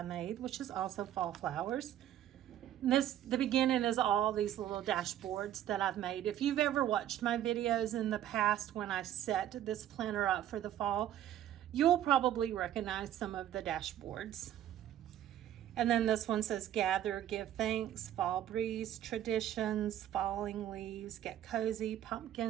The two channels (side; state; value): left; quieter; 11.6 dB